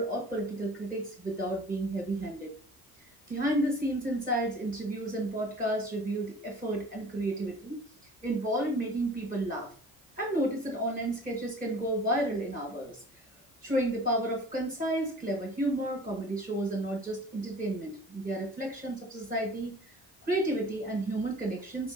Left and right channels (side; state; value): both; normal; correlation 0.45